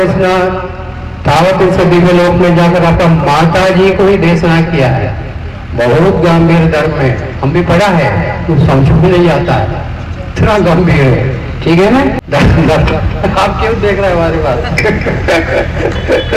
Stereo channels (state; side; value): identical; both; correlation 1.00